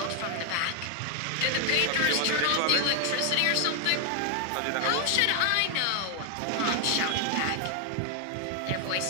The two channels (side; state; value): both; different; correlation 0.00